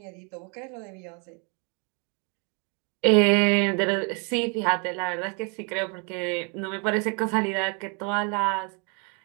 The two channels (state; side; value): quieter; left; 35.7 dB